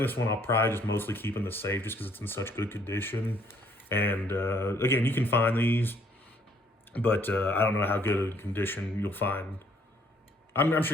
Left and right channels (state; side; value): normal; both; correlation 0.64